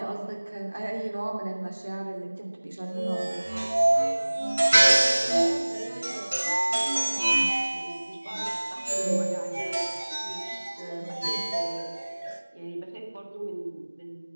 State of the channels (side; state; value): both; inverted; correlation -1.00